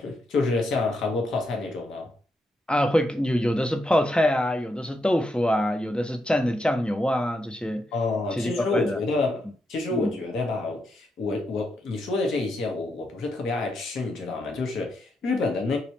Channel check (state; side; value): normal; both; correlation 0.82